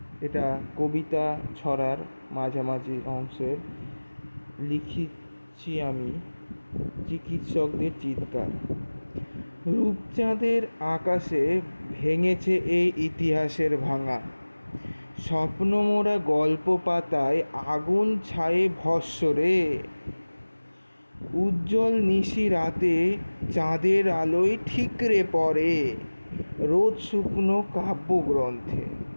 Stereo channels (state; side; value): inverted; both; correlation -1.00